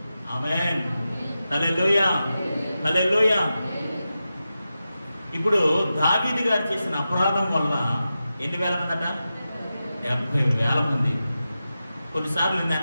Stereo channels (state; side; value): inverted; both; correlation -0.92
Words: ఆమేన్, హల్లెలూయా, హల్లెలూయా. ఇప్పుడు దావీదు గారు చేసిన అపరాధం వల్ల ఎన్ని వేల మంది అట? 70,000 మంది. కొన్నిసార్లు నేను